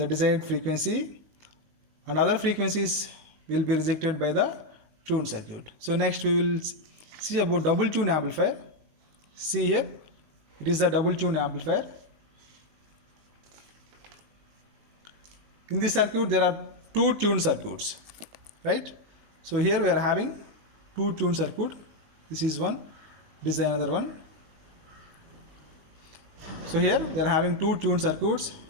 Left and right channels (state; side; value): late; left; 19 ms